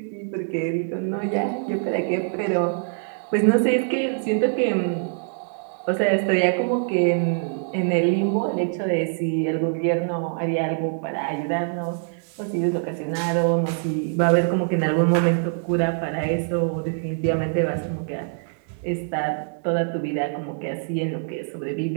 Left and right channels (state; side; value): silent; left; digital silence